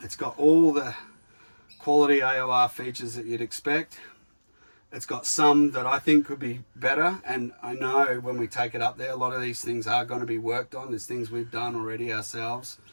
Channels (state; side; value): inverted; both; correlation -1.00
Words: It's got all the quality AOR features that you'd expect. It's got some that I think could be better, and I know when we take it up there, a lot of these things are going to be worked on. There's things we've done already ourselves.